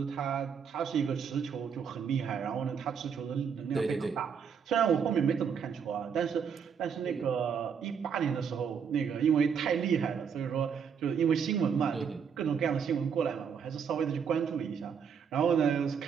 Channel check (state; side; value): quieter; left; 6.9 dB